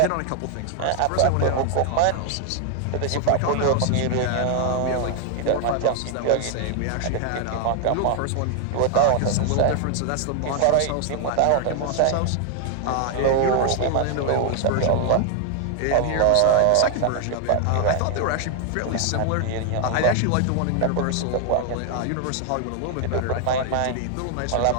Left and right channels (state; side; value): different; both; correlation 0.00